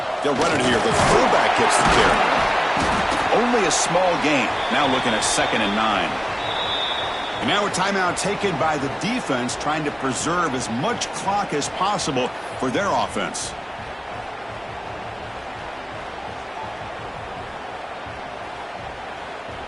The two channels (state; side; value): identical; both; correlation 1.00